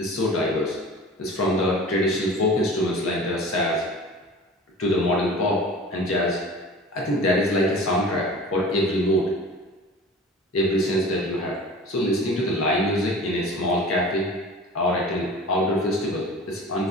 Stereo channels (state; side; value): normal; both; correlation 0.40